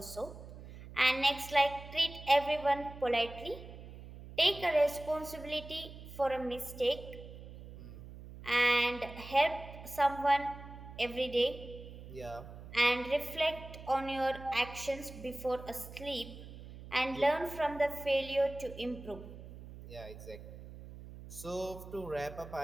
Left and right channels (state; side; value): noise; right; hum, 14 dB below the sound